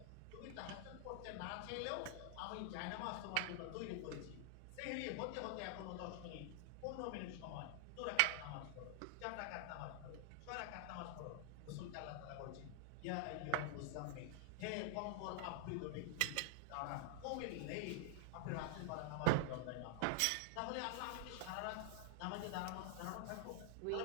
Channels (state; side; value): different; both; correlation -0.01